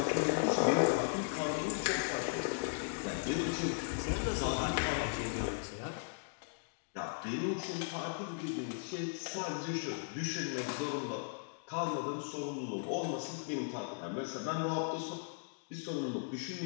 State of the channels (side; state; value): right; silent; digital silence